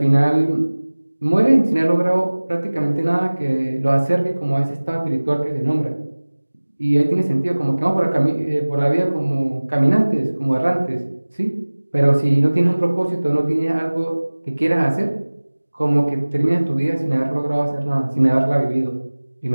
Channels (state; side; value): inverted; both; correlation -1.00